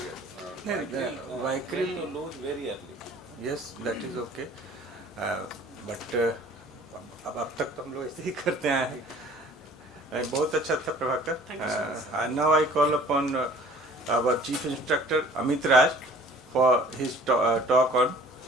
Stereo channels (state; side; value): normal; both; correlation 0.51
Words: Vicryl to lose very early. Yes, that is okay. But अब तक तो हम लोग ऐसे ही करते हैं. बहुत अच्छा था Prabhakar. And now I call upon our chief instructor Amit Raj for his talk on